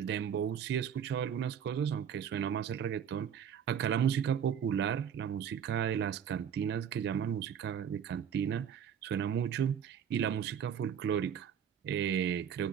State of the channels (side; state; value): left; quieter; 8.3 dB